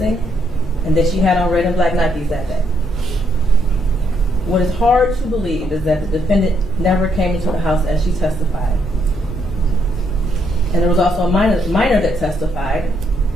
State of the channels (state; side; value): normal; both; correlation 0.74